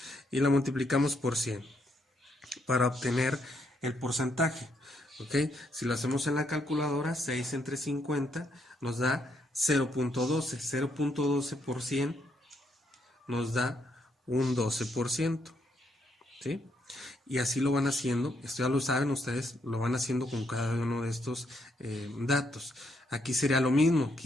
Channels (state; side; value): normal; both; correlation 0.75